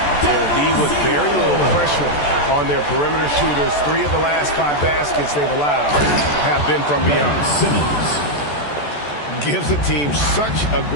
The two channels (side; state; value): right; late; 14 ms